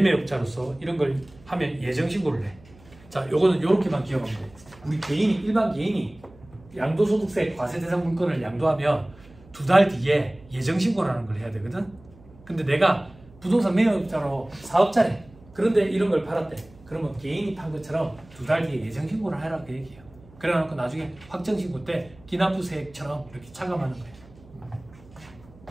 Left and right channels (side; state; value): right; noise; hum, 24 dB below the sound